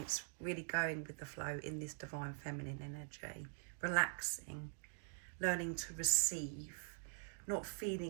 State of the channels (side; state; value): left; silent; digital silence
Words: really going with the flow in this divine feminine energy, relaxing, learning to receive, not